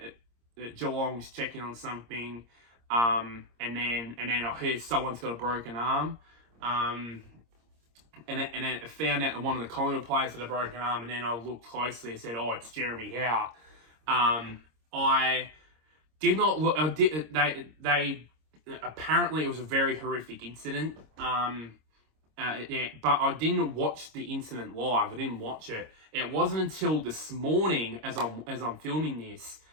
Geelong's checking on something, and then I hear someone's got a broken arm, and then I found out that one of the Collingwood players had a broken arm, and then I looked closely and said, oh, it's Jeremy Howe. I did not look. They apparently it was a very horrific incident. Yeah, but I didn't watch the incident live. I didn't watch it. It wasn't until this morning, as I'm filming this,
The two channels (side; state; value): left; late; 26 ms